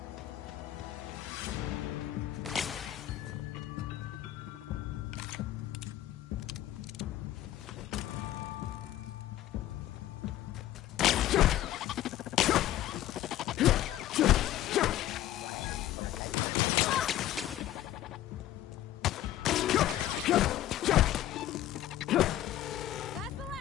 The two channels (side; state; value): right; quieter; 13.2 dB